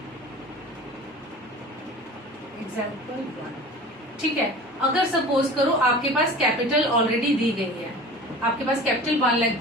एग्जाम्पल 1। ठीक है, अगर सपोज करो आपके पास कैपिटल ऑलरेडी दी गई है, आपके पास कैपिटल 1 लाख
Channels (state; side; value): normal; both; correlation 0.38